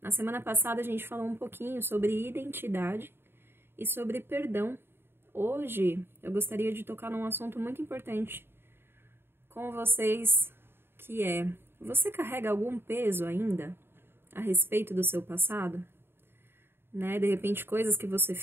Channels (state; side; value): late; left; 0.11 ms